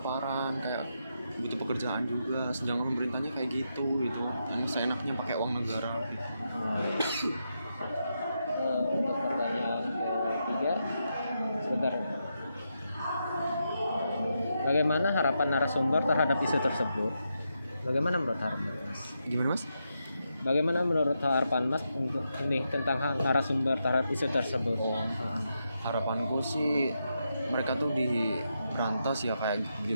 kayak butuh pekerjaan juga, sedangkan pemerintahnya kayak gitu yang seenaknya pakai uang negara gitu. Untuk pertanyaan ketiga, sebentar. Bagaimana harapan narasumber terhadap isu tersebut? Bagaimana menurut harapan mas? Gimana mas? Bagaimana menurut harapan mas untuk ini tentang narasumber terhadap isu tersebut? Harapanku sih mereka tuh diberantas ya kayak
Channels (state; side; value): inverted; both; correlation -0.84